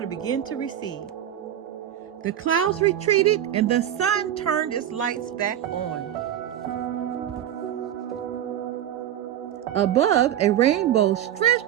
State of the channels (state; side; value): quieter; left; 11.1 dB